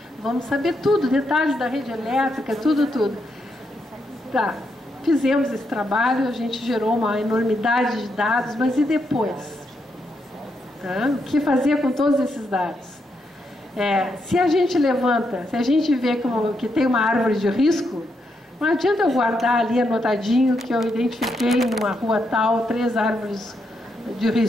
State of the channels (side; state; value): both; normal; correlation 0.80